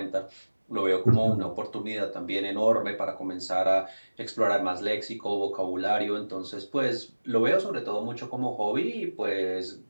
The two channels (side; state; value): both; inverted; correlation -1.00